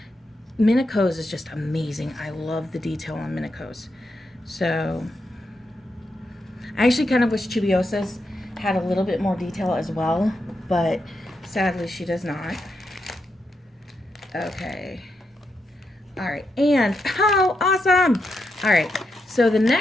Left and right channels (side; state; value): both; normal; correlation 0.83